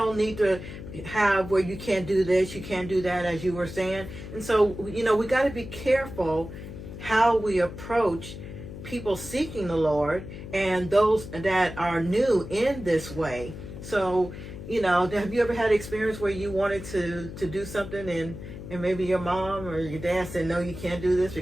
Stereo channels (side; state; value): left; noise; hum, 11 dB below the sound